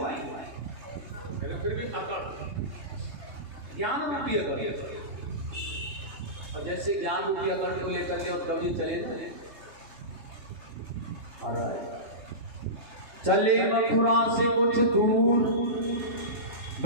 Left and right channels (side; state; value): left; late; 3.2 ms